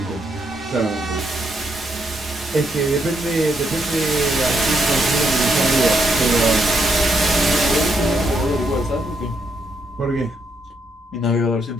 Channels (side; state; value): both; normal; correlation 0.77